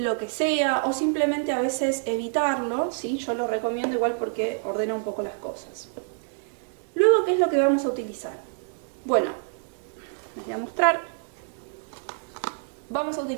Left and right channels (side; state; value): left; silent; 58 dB below the other